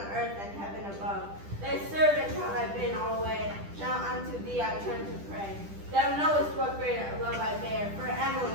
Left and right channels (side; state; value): left; late; 10 ms